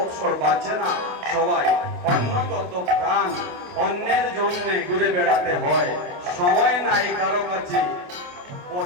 বাঁচে না সবাই। অন্নগত প্রাণ, অন্যের জন্য ঘুরে বেড়াতে হয়, সময় নাই কারো কাছে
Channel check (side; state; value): left; late; 28 ms